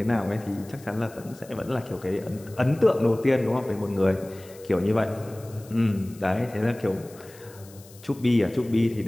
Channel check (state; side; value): noise; left; hiss, 23 dB below the sound